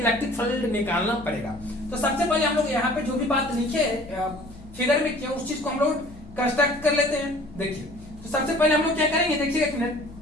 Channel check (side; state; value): both; normal; correlation 0.50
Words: फील्ड निकालना पड़ेगा। तो सबसे पहले हम लोग यहाँ पे जो भी बात लिखे फिगर में किया उस चीज को हम लोग कंस्ट्रक्ट कर लेते हैं। देखिए, तो सबसे पहले हम लोग क्या करेंगे, देखिए एक मिनट,